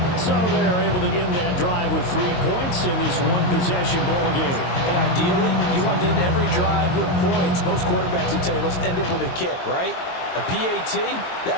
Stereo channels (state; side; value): late; right; 22 ms